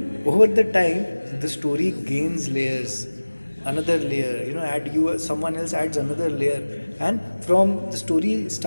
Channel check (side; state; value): both; inverted; correlation -1.00